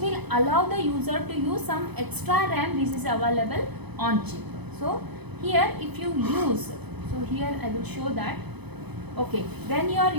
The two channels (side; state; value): left; late; 0.99 ms